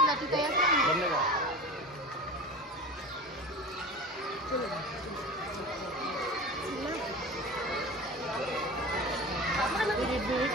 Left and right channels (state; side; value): normal; both; correlation 0.32